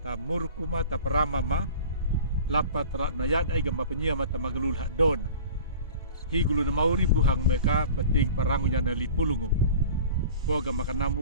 murkuma ta parama ma lapat rat na yad ay gamba penya mata magalulha dona higulu na mauri buhang meka pating parangunya na lipulungu boga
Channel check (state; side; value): inverted; both; correlation -0.40